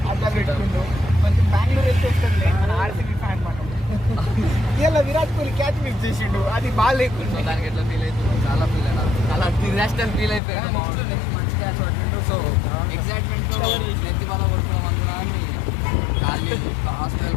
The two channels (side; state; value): right; drops out; at 10.4 s